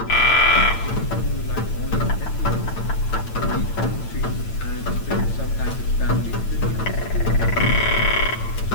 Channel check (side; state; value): right; late; 9.0 ms